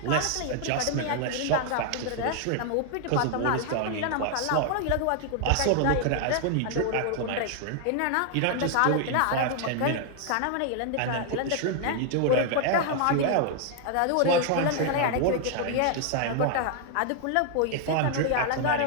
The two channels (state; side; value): different; both; correlation 0.00